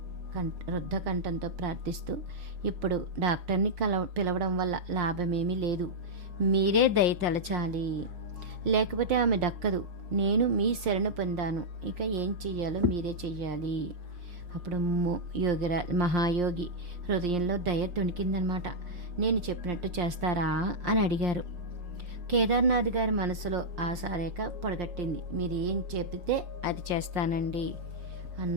రుద్ధ కంఠంతో ప్రార్థిస్తూ, ఇప్పుడు డాక్టర్ని పిలవడం వల్ల లాభమేమీ లేదు. మీరే దయ తలచాలి, లేకపోతే ఆమె దక్కదు. నేను మీ శరణు పొందాను, ఇక ఏం చెయ్యాలో మీరే చెయ్యాలి. అప్పుడు మహాయోగి హృదయంలో దయ తొణికిందనమాట. నేను చెప్పినట్టు చేస్తారా అని అడిగారు. కేదార్నాథ్ గారి మనసులో ఆశారేఖ పొడగట్టింది. మీరు ఏం చెబితే అది చేస్తానండి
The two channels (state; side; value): late; left; 5.6 ms